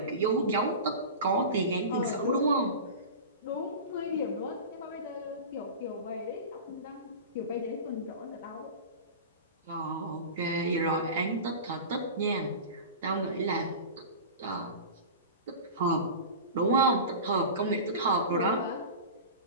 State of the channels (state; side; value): inverted; both; correlation -0.30